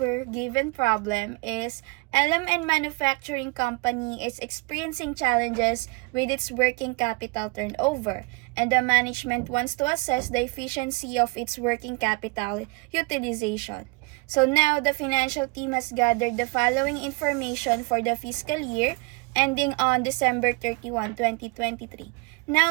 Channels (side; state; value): left; quieter; 29.2 dB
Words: given problem is LMN Manufacturing Company is experiencing challenges with its working capital turnover, and the management wants to assess the efficiency of its working capital utilization. So now, the financial team has gathered the following information for the fiscal year ending on December 31, 2023.